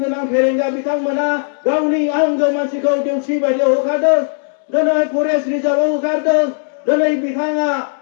फेरेंगा बिथांमोना गावनि आंगो मानसिखौ देउसि बायदियाव होखारदों दिनै फरेस्ट रिजार्भआव होखारदों दिनै बिथाङा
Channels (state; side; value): silent; right; 68 dB below the other